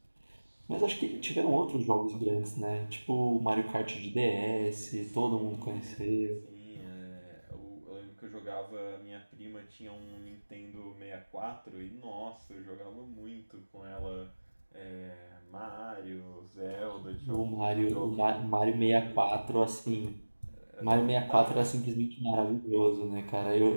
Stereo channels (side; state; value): both; inverted; correlation -1.00